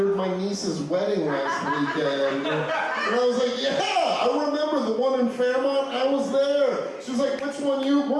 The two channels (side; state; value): both; identical; correlation 1.00